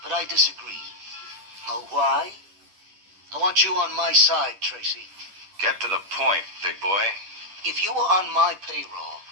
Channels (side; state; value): left; late; 10 ms